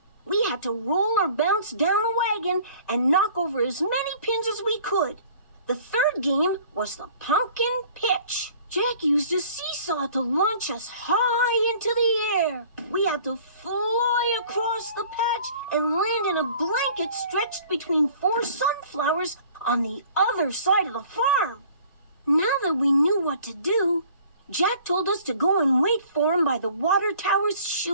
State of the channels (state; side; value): inverted; both; correlation -0.51